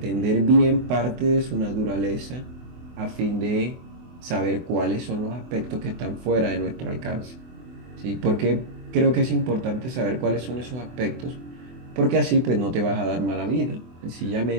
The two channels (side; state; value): left; late; 24 ms